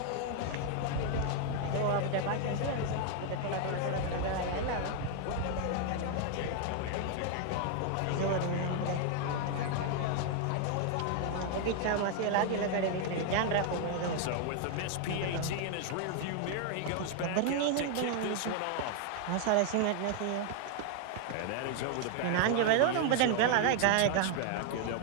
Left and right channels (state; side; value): different; both; correlation 0.00